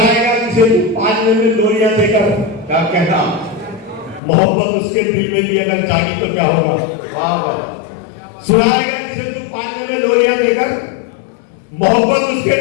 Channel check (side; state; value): right; drops out; at 4.2 s